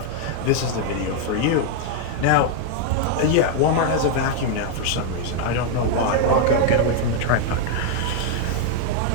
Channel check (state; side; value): different; both; correlation 0.00